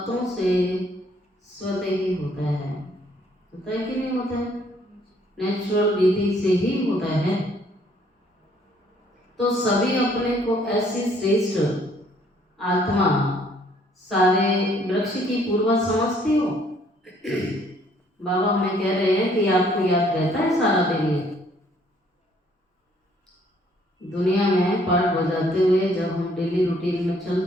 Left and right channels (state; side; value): normal; both; correlation 0.63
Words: से स्वतः ही होता है। होता है कि नहीं होता है? नेचुरल विधि से ही होता है। तो सभी अपने को ऐसी श्रेष्ठ आत्मा, सारे वृक्ष की पूर्वज समझती हो। बाबा हमें कह रहे हैं कि आपको याद रहता है सारा दिन ये दुनिया में पाठ बजाते हुए जब हम डेली रूटीन में